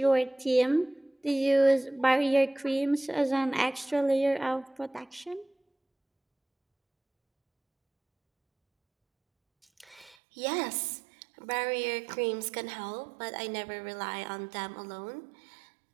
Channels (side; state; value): left; drops out; at 10.2 s